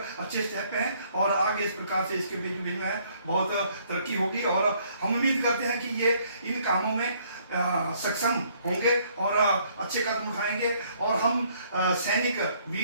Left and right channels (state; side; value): inverted; both; correlation -0.64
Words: स्टेप हैं, और आगे इस प्रकार से इसके बीच में है बहुत तरक्की होगी, और हम उम्मीद करते हैं कि ये इन कामों में सक्षम होंगे और अच्छे कदम उठाएंगे, और हम सैनिक